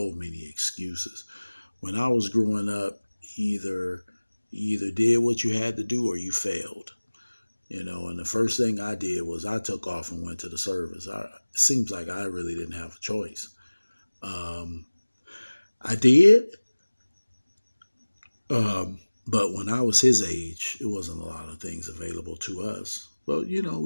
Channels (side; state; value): both; inverted; correlation -1.00